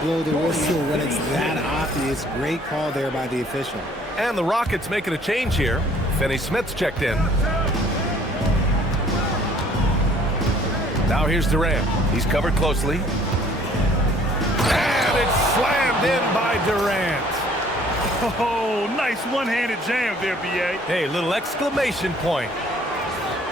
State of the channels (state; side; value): normal; both; correlation 0.57